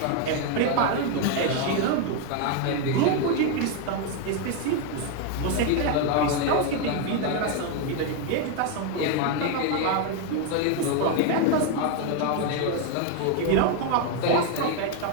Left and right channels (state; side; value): different; both; correlation 0.01